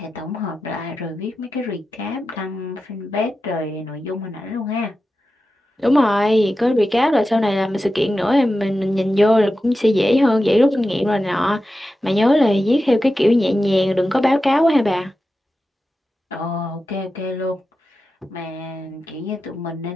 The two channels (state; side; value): normal; both; correlation 0.92